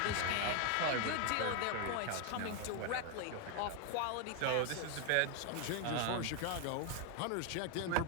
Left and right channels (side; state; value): both; different; correlation 0.01